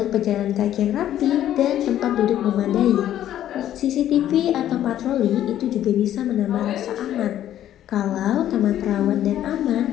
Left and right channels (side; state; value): right; quieter; 11.8 dB